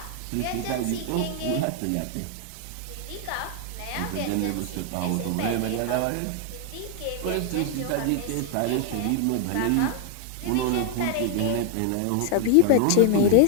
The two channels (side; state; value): both; different; correlation 0.00